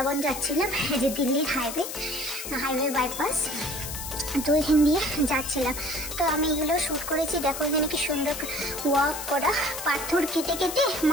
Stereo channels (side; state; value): left; noise; hiss, 7 dB below the sound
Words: যাচ্ছিলাম, এই যে দিল্লির হাইওয়ে বাইপাস, তো এখান দিয়ে যাচ্ছিলাম। তো আমি এগুলো শ্যুট করেছি। দেখো এখানে কি সুন্দর ওয়াক করা, পাথর কেটে কেটে